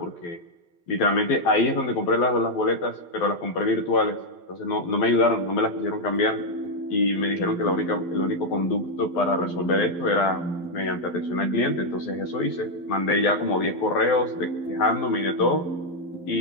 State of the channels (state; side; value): late; right; 12 ms